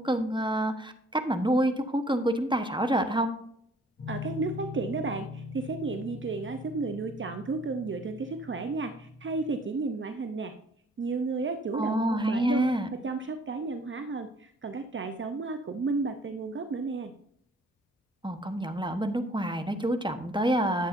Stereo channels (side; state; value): both; normal; correlation 0.58